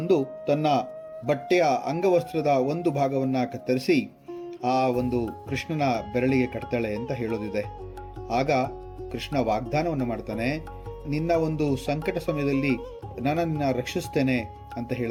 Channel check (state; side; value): identical; both; correlation 1.00